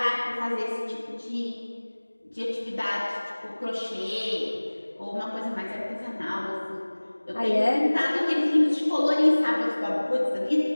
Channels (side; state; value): both; inverted; correlation -1.00